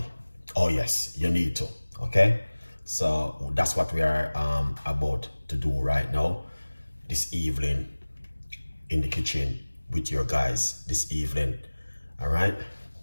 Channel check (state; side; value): inverted; both; correlation -1.00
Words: Oh yes, you need to. Okay, so that's what we are about to do right now, this evening, in the kitchen with your guys this evening. All right.